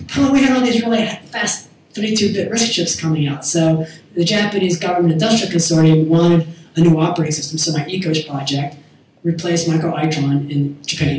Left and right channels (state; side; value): identical; both; correlation 1.00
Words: we had all these really fast 32-bit RISC chips coming out. So the Japanese Government Industrial Consortium wanted a new operating system. So my ECOS project replaced micro-Itron in